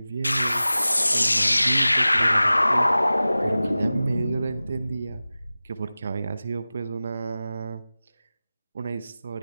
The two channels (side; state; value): both; inverted; correlation -0.96